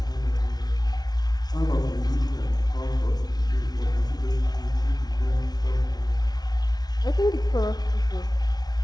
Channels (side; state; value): right; late; 0.19 ms